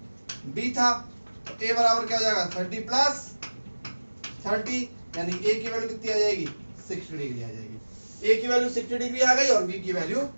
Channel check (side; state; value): both; inverted; correlation -1.00